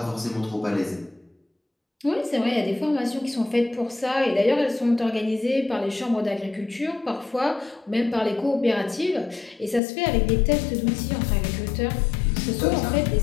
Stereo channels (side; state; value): right; drops out; at 9.8 s